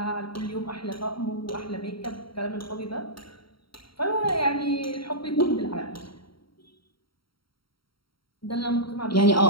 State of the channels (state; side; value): late; right; 0.74 ms